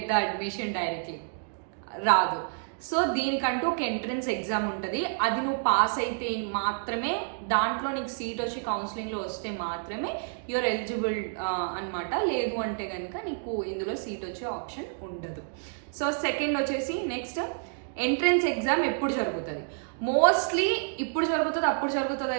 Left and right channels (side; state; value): left; silent; digital silence